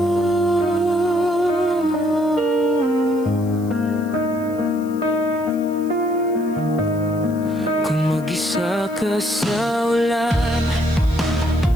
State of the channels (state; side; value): noise; left; hiss, 24 dB below the sound